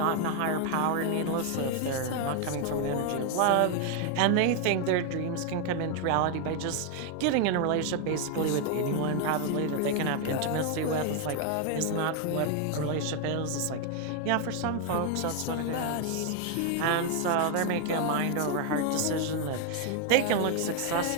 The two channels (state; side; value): different; both; correlation 0.01